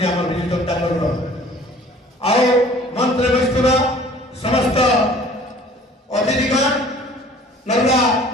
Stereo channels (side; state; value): both; normal; correlation 0.50